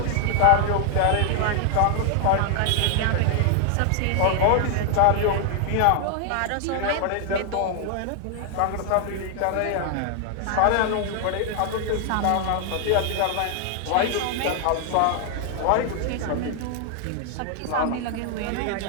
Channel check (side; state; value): both; different; correlation 0.00